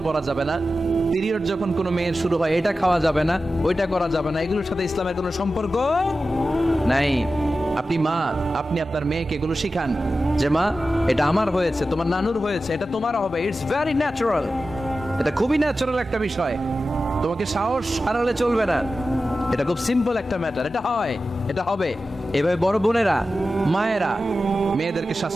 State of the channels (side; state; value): both; normal; correlation 0.93